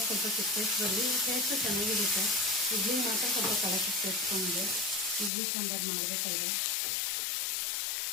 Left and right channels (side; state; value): right; drops out; at 5.3 s